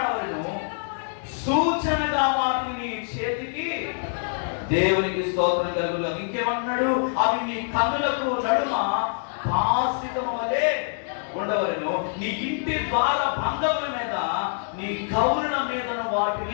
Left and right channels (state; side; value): silent; right; digital silence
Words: సూచనగా వాటిని నీ చేతికి. దేవునికి స్తోత్రం కలుగును. ఇంకేమన్నాడు? అవి నీ కన్నులకు నడుమ భాసితము వలె ఉండవలను, నీ ఇంటి ద్వార బంధముల మీద, నీ కౌరుల మీదను